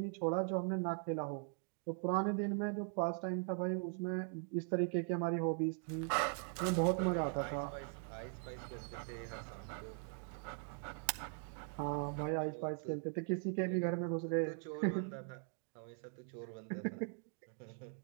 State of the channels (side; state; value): left; silent; 51 dB below the other